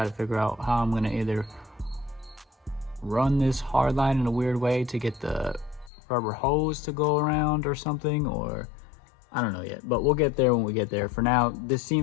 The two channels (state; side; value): drops out; right; at 5.9 s